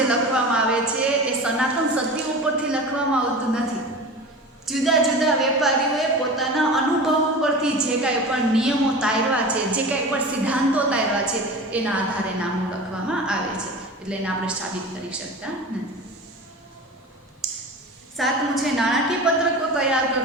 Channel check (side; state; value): both; normal; correlation 0.33